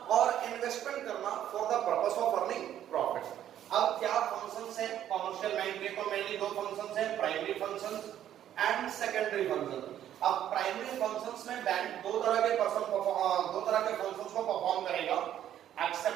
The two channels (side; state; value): left; quieter; 11.0 dB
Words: और इन्वेस्टमेंट करना for the purpose of earning profit. अब क्या फंक्शंस है कमर्शियल बैंक के, तो मेनली दो फंक्शंस है, primary functions and secondary function. अब प्राइमरी फंक्शंस में बैंक दो तरह के फंक्शंस को परफॉर्म करेगा,